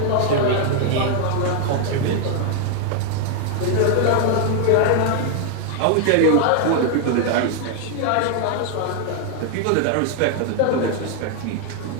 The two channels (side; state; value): both; different; correlation 0.00